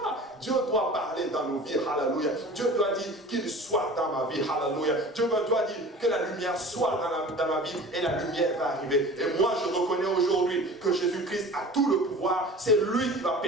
Dieu doit parler dans nos vies, hallelujah. Dieu doit dire qu'il soit dans ma vie, hallelujah. Dieu doit dire que la lumière soit dans ma vie et la lumière va arriver. Et moi je reconnais aujourd'hui que Jésus-Christ a tout le pouvoir. C'est lui qui va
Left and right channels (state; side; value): normal; both; correlation 0.41